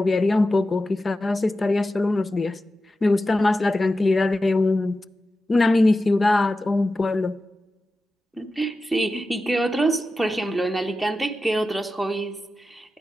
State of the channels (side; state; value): both; normal; correlation 0.93